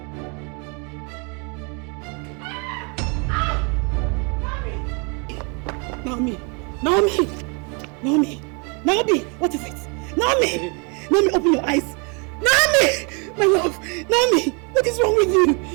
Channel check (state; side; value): quieter; left; 34.0 dB